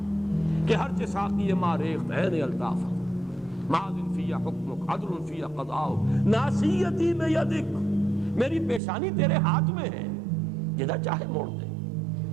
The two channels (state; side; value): drops out; left; at 8.8 s